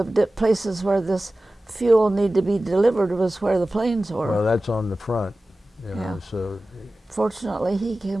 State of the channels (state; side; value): normal; both; correlation 0.96